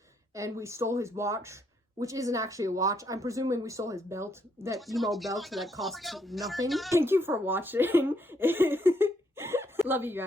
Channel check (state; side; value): normal; both; correlation 0.74